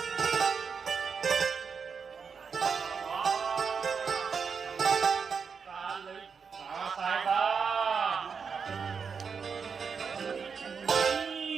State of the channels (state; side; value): quieter; left; 5.9 dB